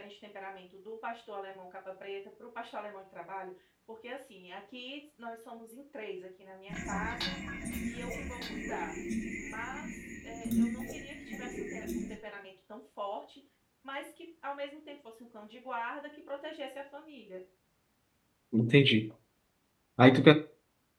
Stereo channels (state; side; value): identical; both; correlation 1.00